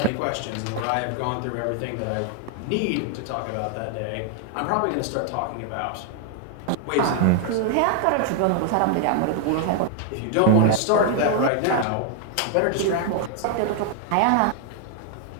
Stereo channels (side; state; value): both; different; correlation 0.00